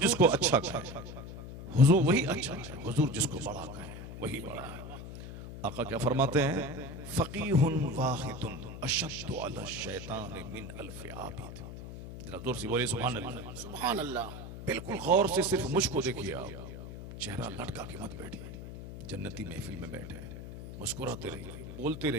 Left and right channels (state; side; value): noise; left; hum, 10 dB below the sound